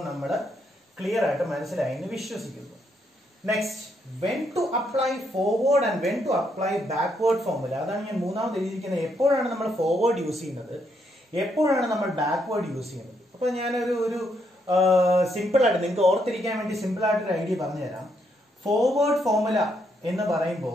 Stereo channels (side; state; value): both; normal; correlation 0.76